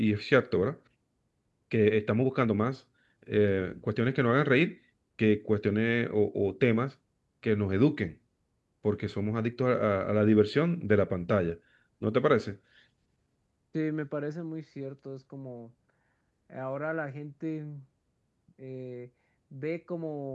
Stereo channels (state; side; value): identical; both; correlation 1.00